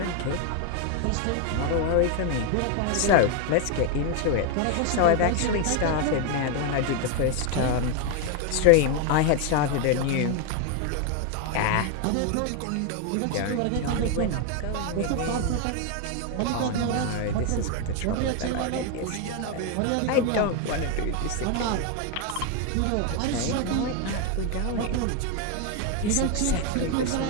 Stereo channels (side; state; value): both; different; correlation 0.01